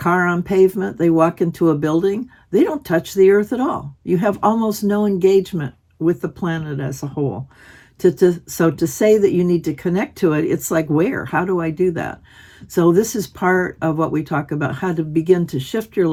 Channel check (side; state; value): both; identical; correlation 1.00